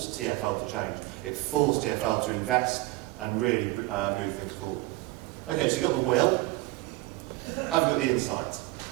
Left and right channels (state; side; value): quieter; left; 19.9 dB